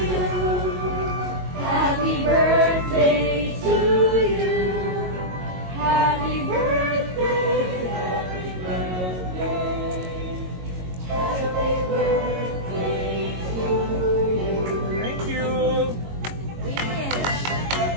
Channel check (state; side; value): late; left; 22 ms